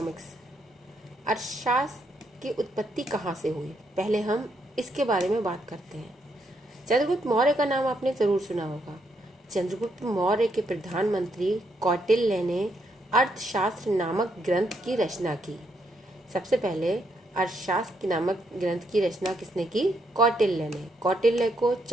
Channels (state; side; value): normal; both; correlation 0.76